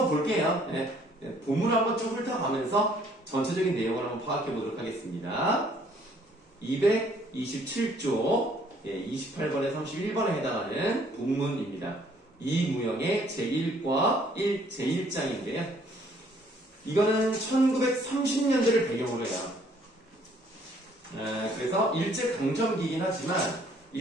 볼게요. 네. 본문을 한번 쭉 훑어가면서 전체적인 내용을 한번 파악해 보도록 하겠습니다. 227조 28번에 31번에 해당하는 본문입니다. 이무영의 제1과 제1장인데요. 이거는 1930년대를 배경으로 해요. 그래서 일제강점기이긴 하지만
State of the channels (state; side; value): normal; both; correlation 0.62